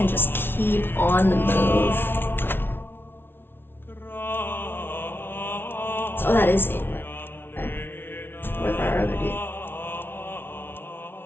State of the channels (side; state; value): right; late; 0.11 ms